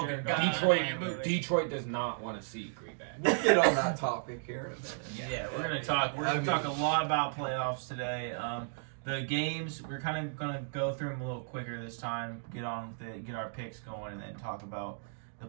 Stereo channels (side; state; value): left; silent; digital silence